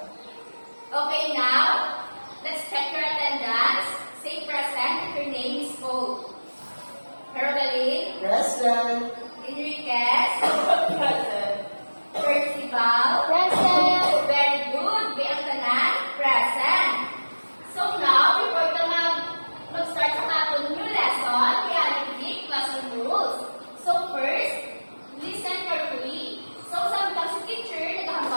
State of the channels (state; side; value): inverted; both; correlation -1.00